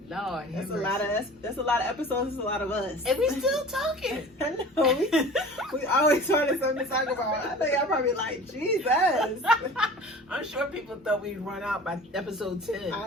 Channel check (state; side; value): normal; both; correlation 0.41